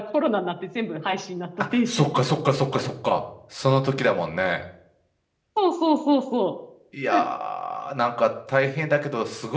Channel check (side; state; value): both; identical; correlation 1.00